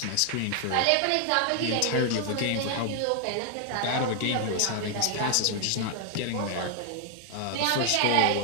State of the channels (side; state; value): both; different; correlation 0.00